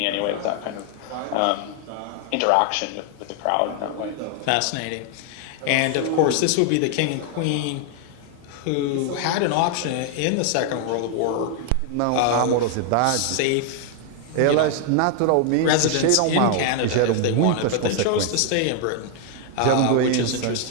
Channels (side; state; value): both; different; correlation 0.00